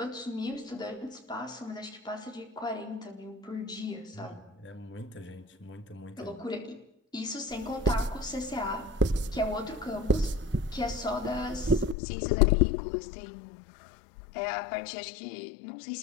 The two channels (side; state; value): right; drops out; at 12.0 s